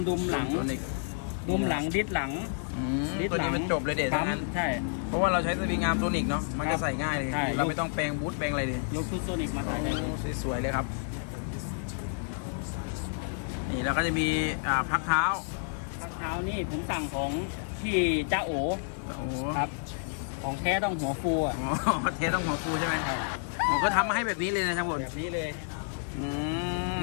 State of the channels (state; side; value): silent; right; digital silence